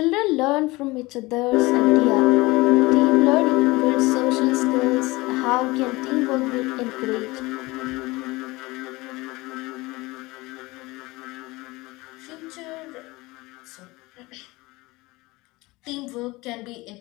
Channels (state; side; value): quieter; right; 21.9 dB